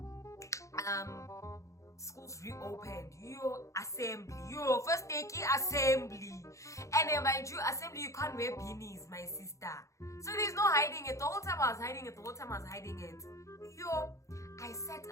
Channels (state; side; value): late; right; 0.15 ms